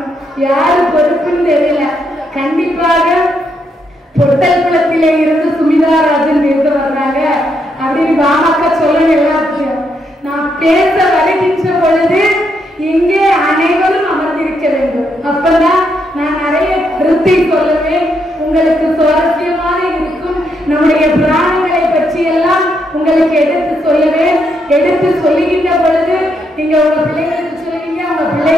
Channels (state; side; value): normal; both; correlation 0.78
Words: யாரு பொறுப்புன்னு தெரியல. கண்டிப்பாக பொட்டல்குளத்திலே இருந்து சுமிதாராஜன் பேச வர்றாங்க அப்படின்னு பாமக சொல்லணும். எல்லாத்தையும் நான் பேச வருகின்ற பொழுது இங்கே அனைவரும் அமர்ந்திருக்க வேண்டும். அப்பதான் நான் நிறைய கருத்தை சொல்லுவேன். உங்களுக்கு சுவாரஸ்யமாக இருக்கும். நம்முடைய புராணங்களை பற்றி எல்லாம் உங்களுக்கு எடுத்து சொல்லுவேன். எடுத்து சொல்லுகின்ற பொழுது நீங்க உங்க பிள்ளைங்களுக்கு சொல்லுவீங்க, உங்க